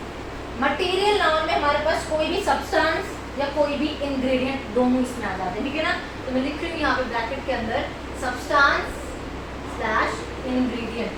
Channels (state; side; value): identical; both; correlation 1.00